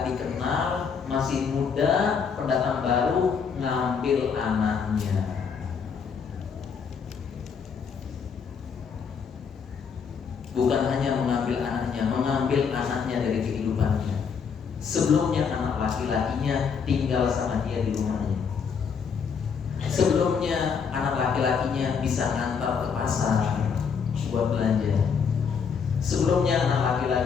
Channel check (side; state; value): right; quieter; 6.3 dB